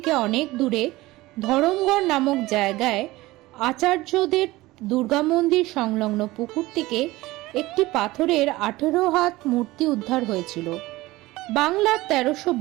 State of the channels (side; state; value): left; quieter; 19.0 dB